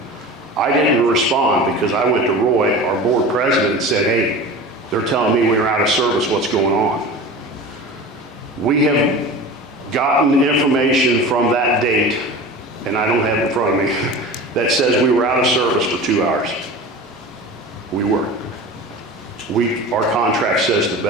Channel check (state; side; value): normal; both; correlation 0.34